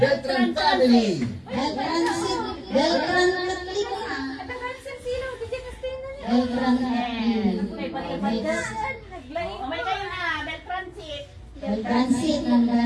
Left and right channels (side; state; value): both; identical; correlation 1.00